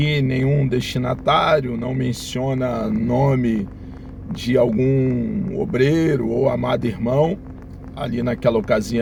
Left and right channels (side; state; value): both; identical; correlation 1.00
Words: nenhum destinatário, não menciona nome de algum obreiro ou amado irmão ali naquela